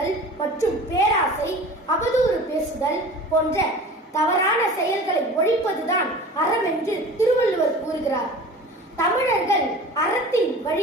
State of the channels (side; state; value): both; normal; correlation 0.40